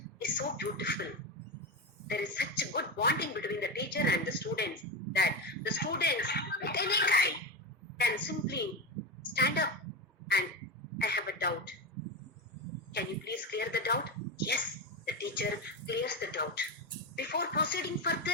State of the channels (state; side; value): normal; both; correlation 0.17